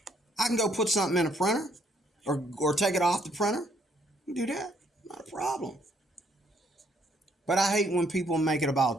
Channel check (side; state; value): both; normal; correlation 0.68